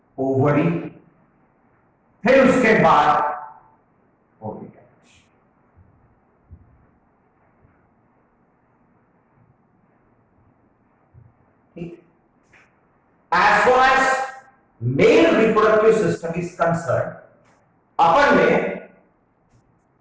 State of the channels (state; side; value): identical; both; correlation 1.00